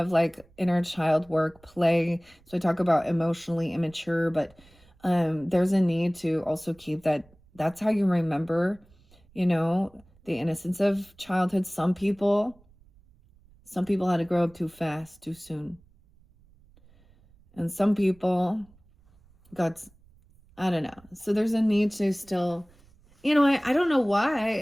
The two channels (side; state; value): right; noise; rumble, 29 dB below the sound